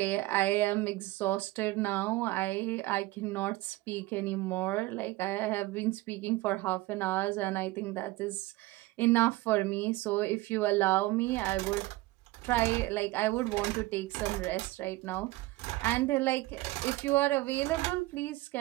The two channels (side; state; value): left; quieter; 18.8 dB